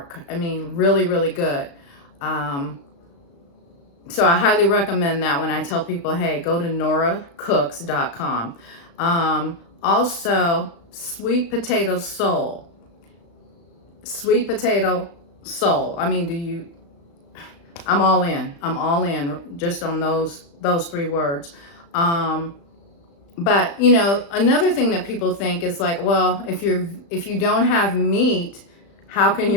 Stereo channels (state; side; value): late; right; 35 ms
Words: I mean, really, really good. So I highly recommend that when I tell people, hey, go to noracooks.com. Also, sweet potato soul. Sweet potato soul. I mean, I'm all in. I'm all in just on those three words. But another thing that people think is like, well, if you don't have meat, how can